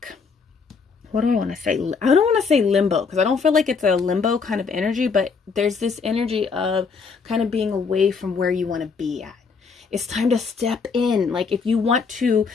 what do I want to say? I don't want to say limbo because I don't feel like it's a limbo kind of energy, but there's this energy of kind of being away from where you want to be at. It's time to step in. Like if you want to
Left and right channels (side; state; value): right; quieter; 5.2 dB